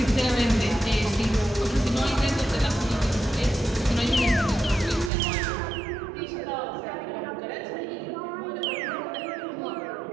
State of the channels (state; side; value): drops out; left; at 5.1 s